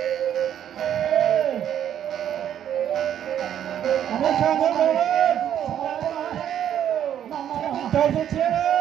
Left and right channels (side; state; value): left; quieter; 10.1 dB